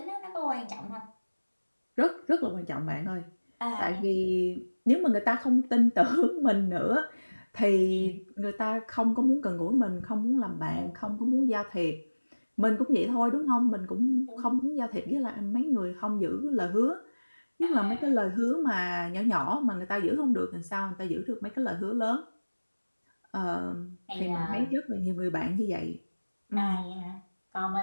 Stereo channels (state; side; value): inverted; both; correlation -1.00